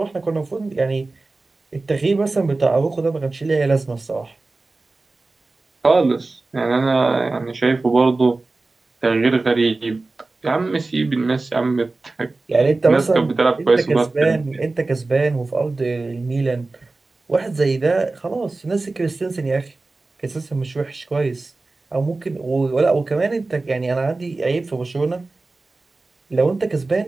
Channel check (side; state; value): left; quieter; 3.4 dB